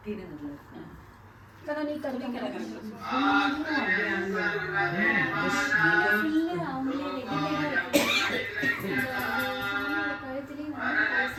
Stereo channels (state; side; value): identical; both; correlation 1.00